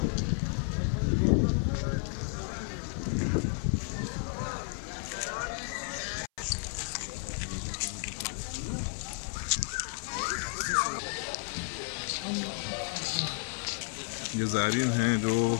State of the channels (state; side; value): silent; right; 56 dB below the other